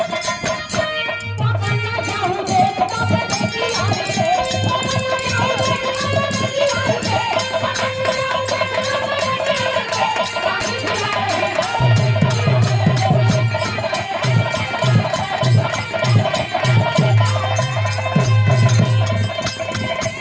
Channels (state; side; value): identical; both; correlation 1.00